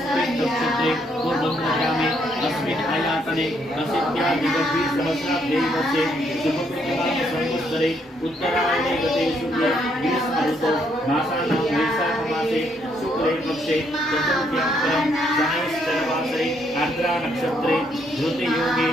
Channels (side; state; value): both; normal; correlation 0.72